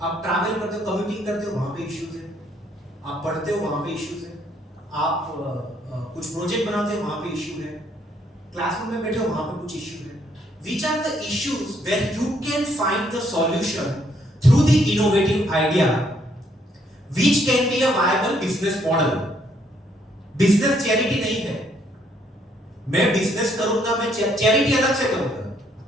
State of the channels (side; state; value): both; normal; correlation 0.69